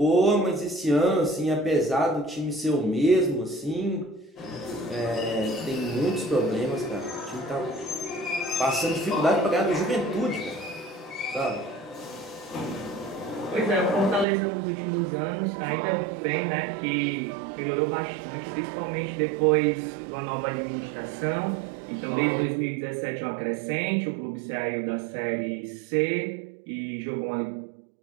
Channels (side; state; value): left; drops out; at 14.2 s